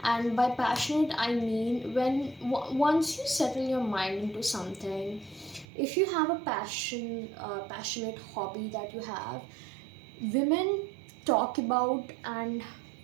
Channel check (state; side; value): drops out; left; at 5.7 s